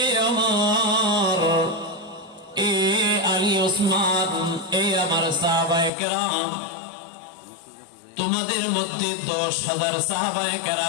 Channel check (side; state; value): right; drops out; at 5.9 s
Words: ওমর, এ আলী, ওসমান, এ আমার সাহাবায়ে কেরাম, তোমাদের মধ্যে 10,000 সাহাবায়ে